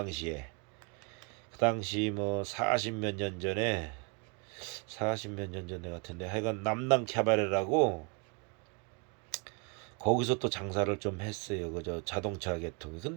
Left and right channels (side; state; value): left; quieter; 33.8 dB